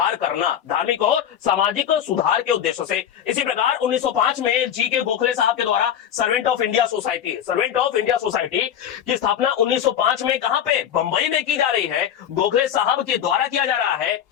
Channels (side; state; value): right; quieter; 9.6 dB